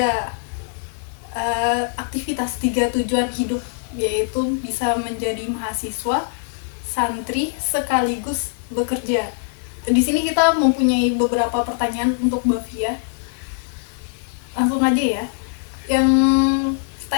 tujuan hidup, yaitu bisa menjadi mahasiswa, santri, sekaligus bekerja. Di sini kita mempunyai beberapa pertanyaan untuk Mbak Fia. Langsung aja ya. Yang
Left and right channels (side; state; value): right; silent; digital silence